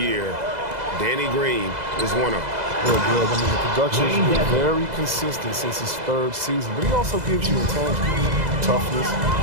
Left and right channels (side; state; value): left; late; 2.0 ms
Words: Danny Green is one of them. Good. I mean, the production's been very consistent since his 3rd season, but he also gives you intangibles, toughness,